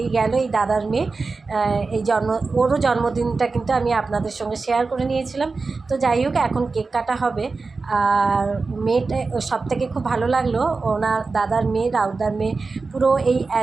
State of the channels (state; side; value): quieter; left; 4.1 dB